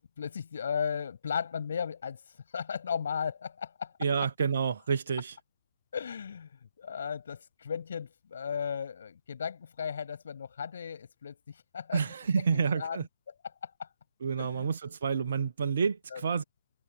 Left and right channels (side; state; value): both; inverted; correlation -0.77